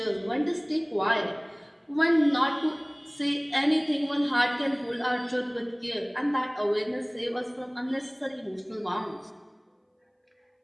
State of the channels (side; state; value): both; identical; correlation 1.00